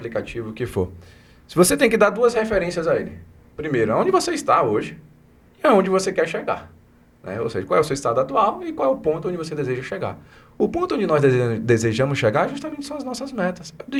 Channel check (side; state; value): both; identical; correlation 1.00